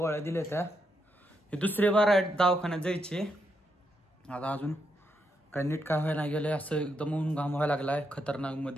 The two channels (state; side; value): normal; both; correlation 0.80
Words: दिल्या त्या. हे दुसरे बार आहे दवाखान्यात जायचे. आता अजून काय नीट काय व्हायला गेलंय. असं एकदम ऊन घाम व्हायला लागलाय खतरनाक